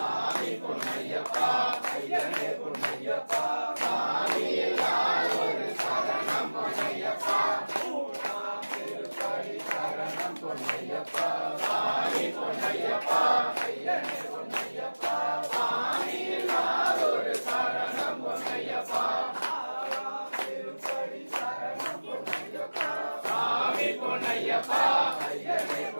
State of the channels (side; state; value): both; inverted; correlation -1.00